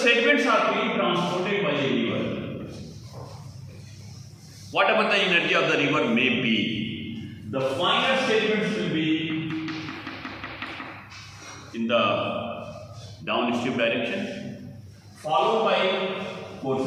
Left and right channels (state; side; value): identical; both; correlation 1.00